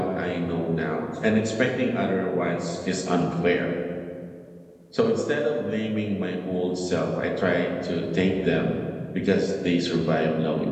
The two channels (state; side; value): identical; both; correlation 1.00